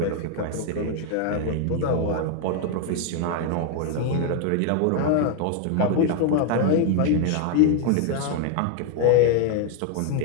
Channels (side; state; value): both; different; correlation 0.01